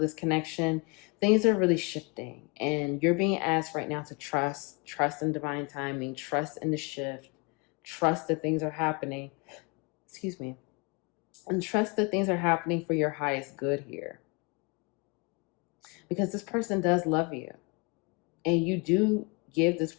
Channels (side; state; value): right; quieter; 30.1 dB